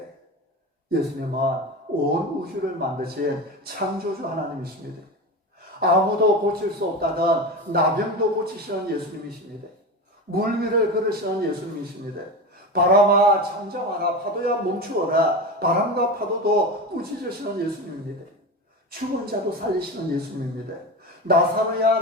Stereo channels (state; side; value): normal; both; correlation 0.24